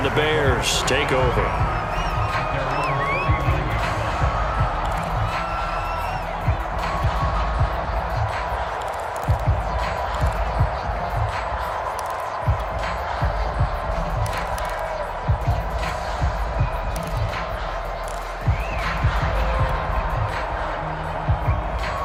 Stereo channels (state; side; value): identical; both; correlation 1.00